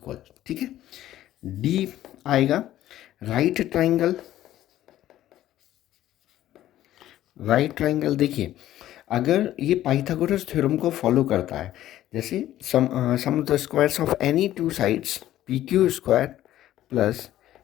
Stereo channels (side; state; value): right; quieter; 13.4 dB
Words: ठीक है। डी आएगा राइट ट्राइंगल। राइट ट्राइंगल देखिए, अगर ये पाइथागोरस थ्योरम को फॉलो करता है, जैसे sum of the squares of any two sides P Q square plus